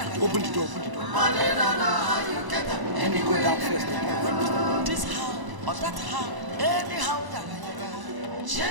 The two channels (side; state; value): left; late; 1.0 ms